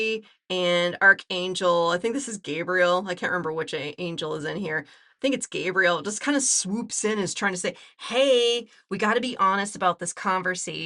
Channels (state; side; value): identical; both; correlation 1.00